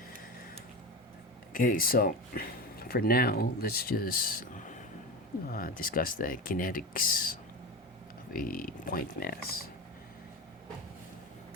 Okay, so for now, let's just discuss the kinetics of a point mass.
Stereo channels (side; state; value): both; normal; correlation 0.24